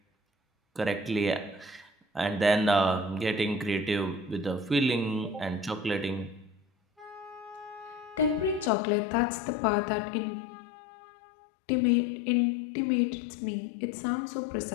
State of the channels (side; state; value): right; drops out; at 8.7 s